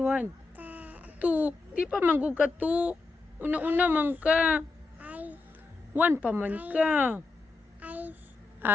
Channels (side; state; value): right; quieter; 3.7 dB